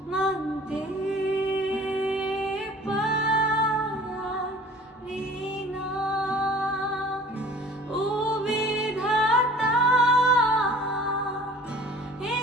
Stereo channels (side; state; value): both; normal; correlation 0.47